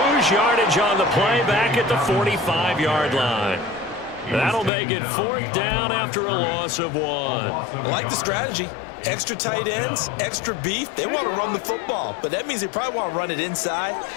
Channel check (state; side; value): drops out; right; at 4.7 s